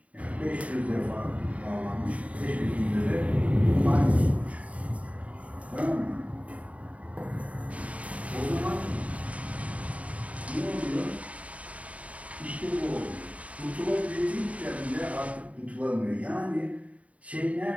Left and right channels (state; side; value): late; left; 0.067 ms